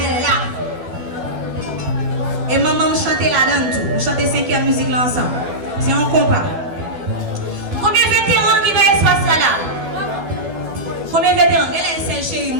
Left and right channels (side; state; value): left; late; 12 ms